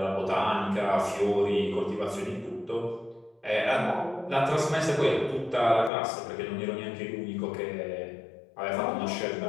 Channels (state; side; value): drops out; right; at 5.9 s